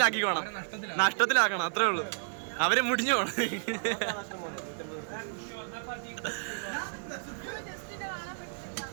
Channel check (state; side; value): silent; left; digital silence